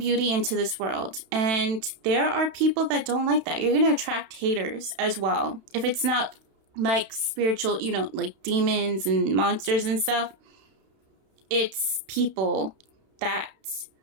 into this world. And there are people that don't like that. You're going to attract haters as well. If it's not like spiritual, you know, like demons and monsters and stuff. It's people that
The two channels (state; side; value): late; left; 31 ms